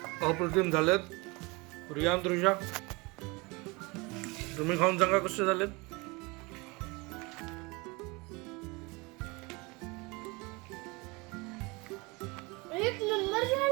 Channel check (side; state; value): left; quieter; 26.1 dB